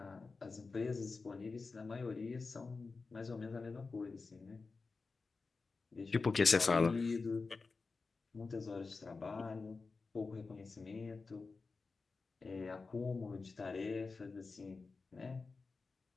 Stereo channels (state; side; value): quieter; right; 4.2 dB